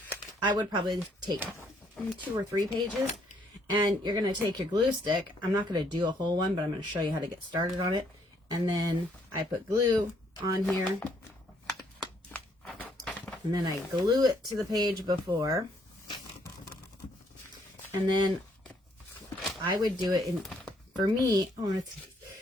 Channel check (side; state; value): both; normal; correlation 0.68